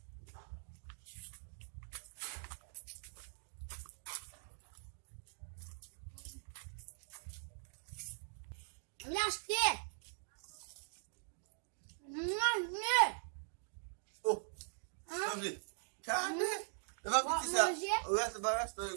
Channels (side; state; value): left; silent; digital silence